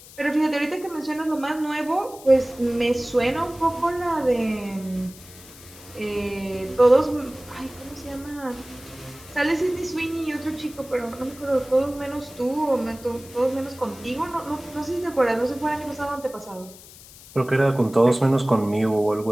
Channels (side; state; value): left; noise; hiss, 19 dB below the sound